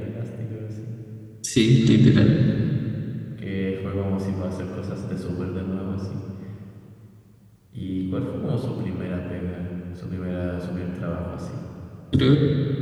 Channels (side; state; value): both; identical; correlation 1.00